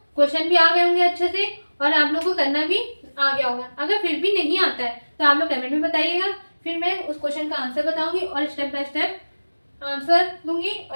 क्वेश्चन भी आ गए होंगे अच्छे से और आप लोगों को करना भी आ गया होगा। अगर फिर भी नहीं आता है तो आप लोग कमेंट में बताइएगा, फिर मैं उस क्वेश्चन का आंसर बताऊंगी और स्टेप बाय स्टेप आंसर दूंगी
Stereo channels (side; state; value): both; inverted; correlation -1.00